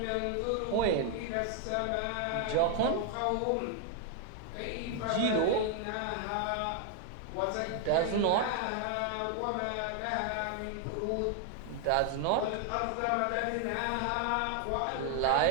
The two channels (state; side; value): different; both; correlation 0.00